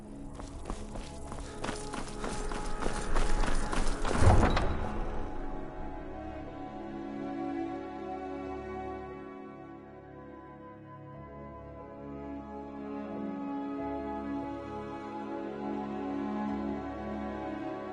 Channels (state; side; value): identical; both; correlation 1.00